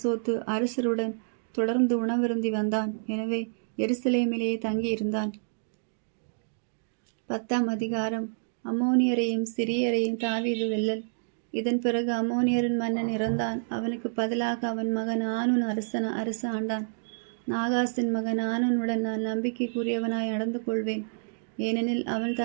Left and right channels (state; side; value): silent; left; digital silence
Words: அரசருடன் தொடர்ந்து உணவருந்தி வந்தான். எனவே எருசலேமிலேயே தங்கியிருந்தான். 10ஆம் அதிகாரம். அம்மோனியரையும் சிரியரையும் தாவீது வெல்லல். இதன் பிறகு அம்மோனியரின் மன்னன் இறந்தான். அவனுக்கு பதிலாக அவன் மகன் ஆனூன் அரச ஆண்டான். நாகாசின் மகன் ஆனூனுடன் நான் நம்பிக்கைக்குரியவனாய் நடந்து கொள்வேன், ஏனெனில் அவன்